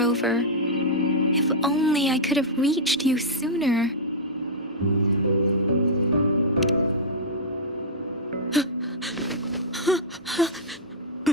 If only I could have reached you sooner.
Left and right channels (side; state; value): both; normal; correlation -0.10